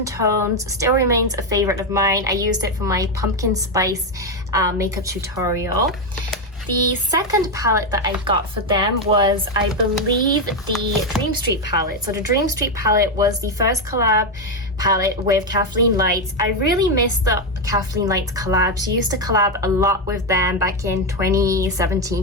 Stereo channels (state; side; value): normal; both; correlation 0.07